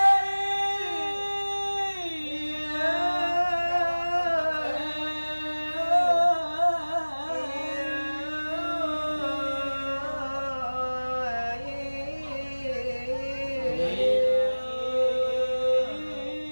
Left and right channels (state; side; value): inverted; both; correlation -1.00